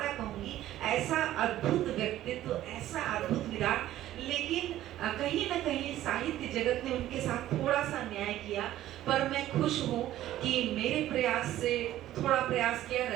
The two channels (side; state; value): left; quieter; 13.7 dB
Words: कहूंगी। ऐसा अद्भुत व्यक्तित्व, ऐसा अद्भुत विराट, लेकिन कहीं ना कहीं साहित्य जगत ने उनके साथ थोड़ा सा न्याय किया। पर मैं खुश हूँ कि मेरे प्रयास से थोड़ा प्रयास किया,